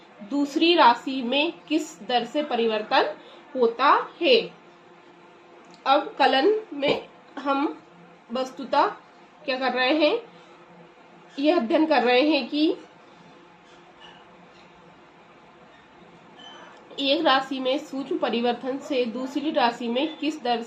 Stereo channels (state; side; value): identical; both; correlation 1.00